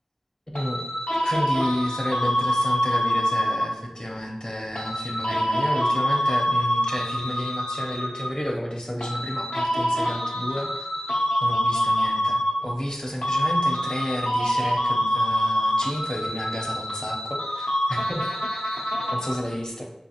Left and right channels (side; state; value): both; normal; correlation 0.95